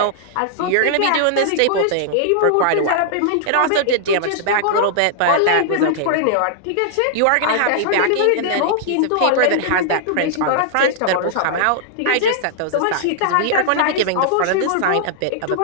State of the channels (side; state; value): both; different; correlation -0.01